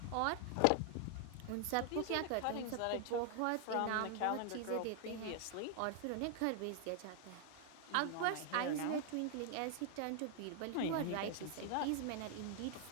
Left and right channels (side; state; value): both; different; correlation 0.00